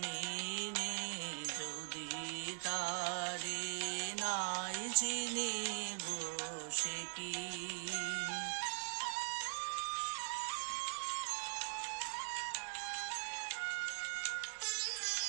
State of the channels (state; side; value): silent; left; digital silence